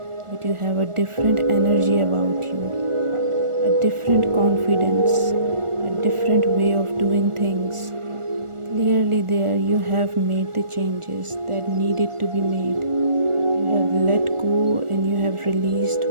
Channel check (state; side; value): late; left; 1.4 ms